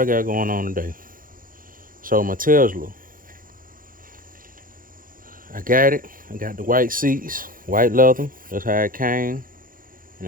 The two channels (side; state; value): left; late; 0.40 ms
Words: got going on today. So my Tesla, I got it. I got the white seats, white leather. That's how it came, and